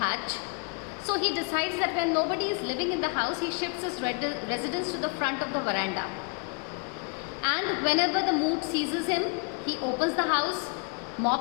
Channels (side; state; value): right; quieter; 35.8 dB